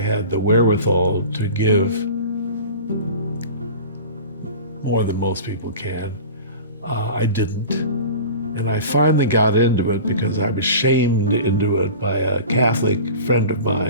the wherewithal to give more than most people can, I didn't. And I finally got into it because I was shamed into it by a Catholic friend of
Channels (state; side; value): inverted; both; correlation -0.36